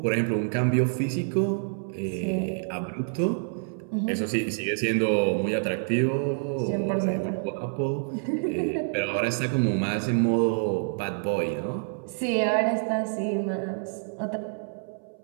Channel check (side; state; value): left; silent; 60 dB below the other